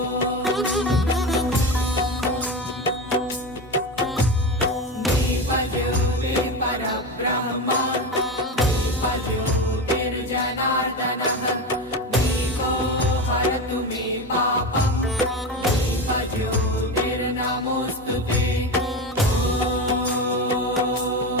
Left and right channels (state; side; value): normal; both; correlation 0.21